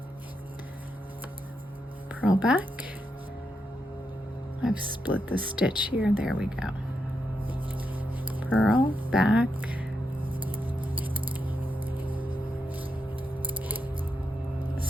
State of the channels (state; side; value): normal; both; correlation 0.84